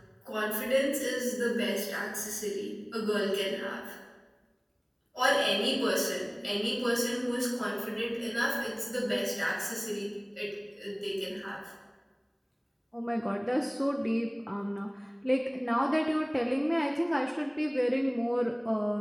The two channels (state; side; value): identical; both; correlation 1.00